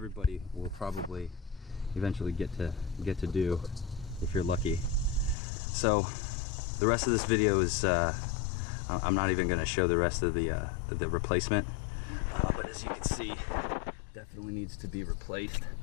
will probably eventually get to do if you're lucky. So the rest of this video is I'm not even going to show the rest of the replacement, but as you can see, definitely needs to be replaced.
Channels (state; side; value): drops out; right; at 5.4 s